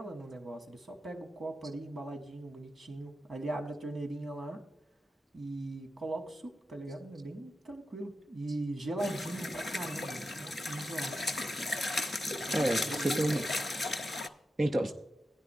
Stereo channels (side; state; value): both; normal; correlation 0.89